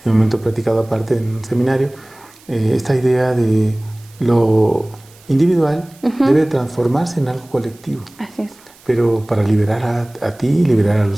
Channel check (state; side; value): noise; right; hiss, 27 dB below the sound